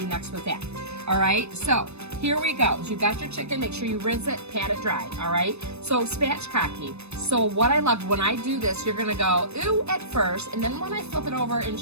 next with that. All right, so here we go. So you've got your chicken. Make sure you rinse it, pat it dry. All right, so spatchcocking. So what I love, when I do this, you're going to go, ooh, at first, and then when I flip it over and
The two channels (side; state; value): left; late; 0.80 ms